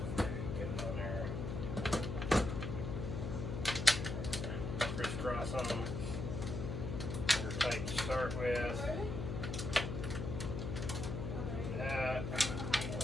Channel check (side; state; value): left; noise; hum, 3 dB below the sound